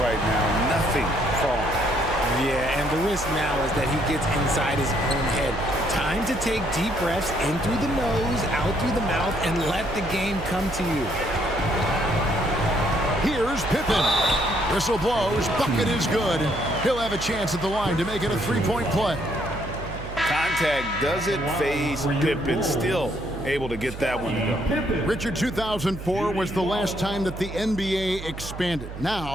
now. Nothing falling. Yeah, and the risk now is that he gets inside his own head. Time to take deep breaths in through the nose, out through the mouth, and let the game come to you. Here's Pippen. Whistle blows. Bucket is good. He'll have a chance at the line to make it a three-point play. Contact doesn't phase Pippen. Still able to get that one to go. Richard, 2004 was the last time that the NBA expanded.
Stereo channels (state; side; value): noise; right; hum, 10 dB below the sound